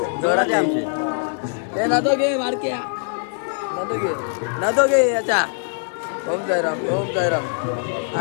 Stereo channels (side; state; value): right; silent; 61 dB below the other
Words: जोरात आमचे हे नादो घे मारके नादो घे याच्या. ओम साईराम. ओम साईराम.